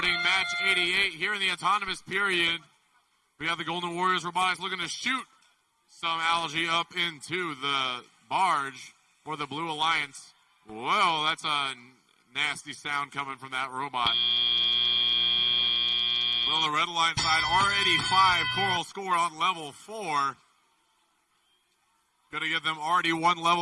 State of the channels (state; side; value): identical; both; correlation 1.00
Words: match 88 here in the autonomous period. We have the Golden Warriors Robotics looking to shoot some algae up into the barge for the Blue Alliance. Whoa, that's a nasty sound coming from that robot. Well, the Red Alliance side already 5 coral score on level 4. Going to give them already 1